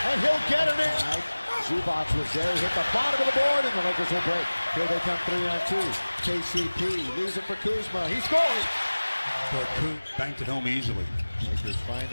he'll get it in. Zubac was there. He hit the bottom of the board, and the Lakers will break. Here they come 3-on-2. KCP leaves it for Kuzma. He scores. But Kuz banked it home easily. Lakers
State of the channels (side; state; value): both; inverted; correlation -1.00